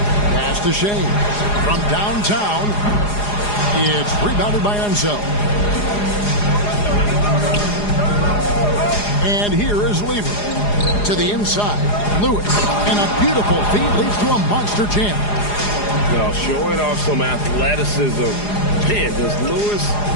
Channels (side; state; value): right; late; 4.9 ms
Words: Pass to Shea. From downtown, it's rebounded by Unseld. And here is Lever. To the inside, Lewis, and a beautiful feed leads to a monster jam. Now showing off some athleticism. Man, does Lewis